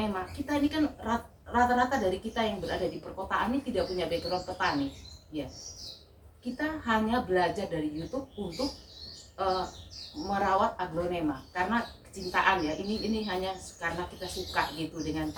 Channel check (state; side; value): identical; both; correlation 1.00